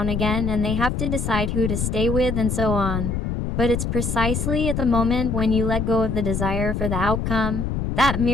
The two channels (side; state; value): left; noise; rumble, 1 dB below the sound